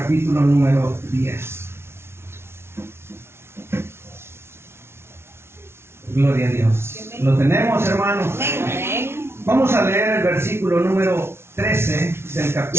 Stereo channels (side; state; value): left; late; 0.12 ms